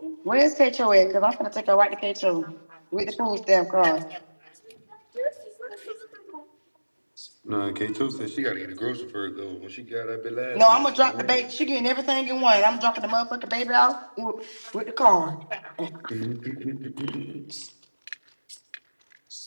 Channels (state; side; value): inverted; both; correlation -1.00